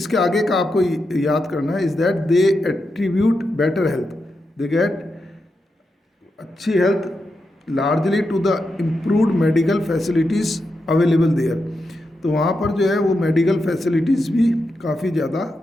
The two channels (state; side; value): normal; both; correlation 0.87